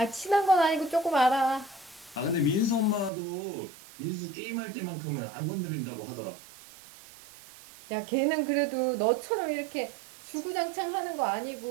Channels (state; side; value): drops out; left; at 3.1 s